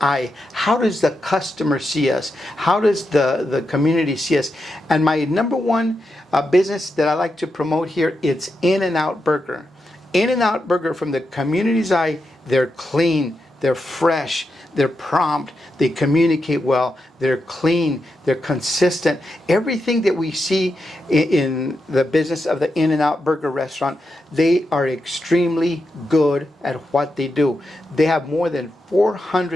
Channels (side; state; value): both; normal; correlation 0.86